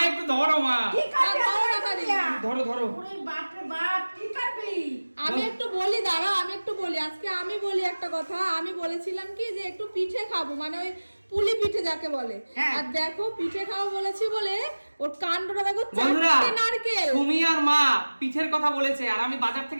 একটু ধরো মা। কি করবি? ধরো ধরো। ওরে বাপ রে বাপ, কি করবি? আমি একটু বলি, দাঁড়াও আমি একটু বলি। আজকে আমি বলি একটা কথা। আমি বলেছিলাম কি যে একটু পিঠে খাবো, মানে ওই পুলি পিঠে যাকে বলে। হ্যাঁ। আর দেখো পিঠে খাবো বলেছি বলে ওর কাণ্ডটা দেখো, বন্ধুরা, চারটে নারকেল। সুমি আর মা পিঠের কথা বলেছে, আর আমি বাজার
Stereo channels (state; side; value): inverted; both; correlation -1.00